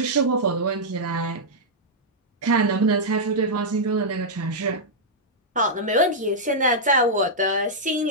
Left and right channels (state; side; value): normal; both; correlation -0.08